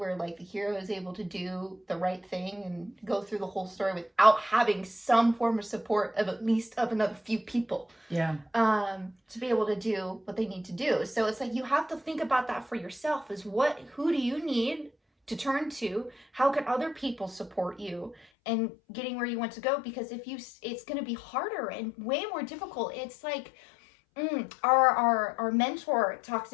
like the hero is able to do the right thing and go through the whole story without having some form of support of at least of another few people. To be able to do what they need to do. So it's like you have to think about that for yourself, is who do you need to turn to? How can other people support you and getting where you want to go? Because it's going to be harder and way more difficult. It's like our mentor talks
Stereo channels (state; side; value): drops out; right; at 18.2 s